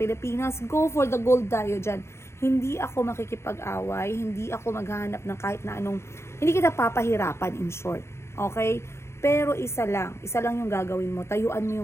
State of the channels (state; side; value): late; right; 0.13 ms